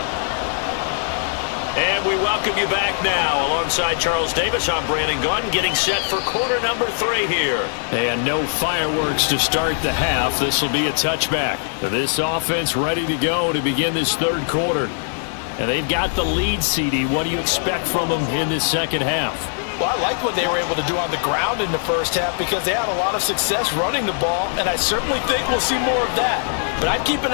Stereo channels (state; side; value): silent; right; digital silence